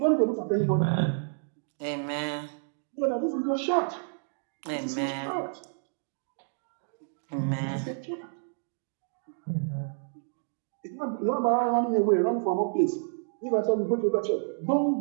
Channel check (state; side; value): silent; left; digital silence